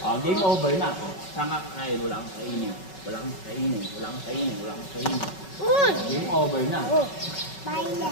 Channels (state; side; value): late; right; 5.3 ms